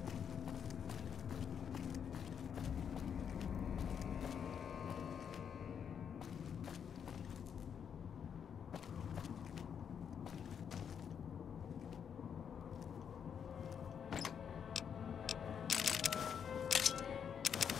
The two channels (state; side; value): quieter; right; 7.6 dB